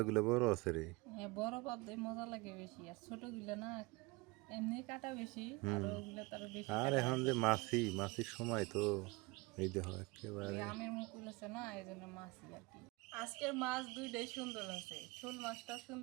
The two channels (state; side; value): quieter; left; 24.8 dB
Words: বড় আছে রে। হ্যাঁ, বড় পাবদায় মজা লাগে বেশি, আর ছোটগুলো না এমনি কাটা বেশি, আর হুম। ওগুলো তার বেশি আর কাটা এখন লাগে। যে মাছির সময় তো এই দেখো ওই একেবারে। আমের মুকুল আছে না, এই জন্য মাছই আর কি। আজকের মাছ দুইটাই সুন্দর আছে, শোল মাছটাও